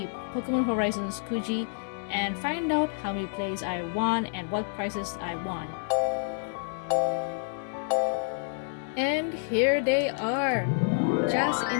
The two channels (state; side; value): silent; right; digital silence